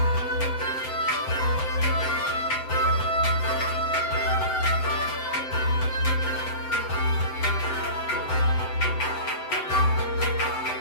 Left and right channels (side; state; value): right; late; 7.9 ms